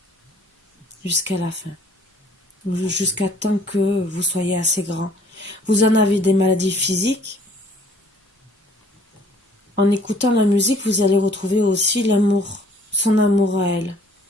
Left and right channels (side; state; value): both; normal; correlation 0.56